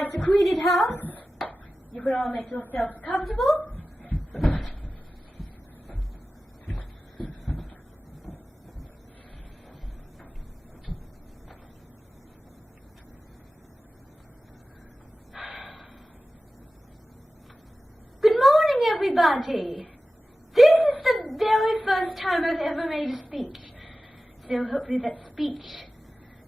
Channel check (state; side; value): normal; both; correlation 0.95